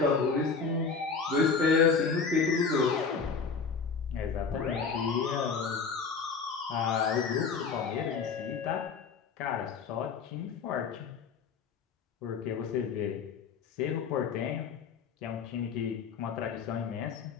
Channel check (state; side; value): quieter; right; 5.4 dB